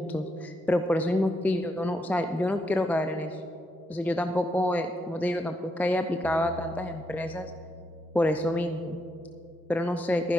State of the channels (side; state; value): both; normal; correlation 0.79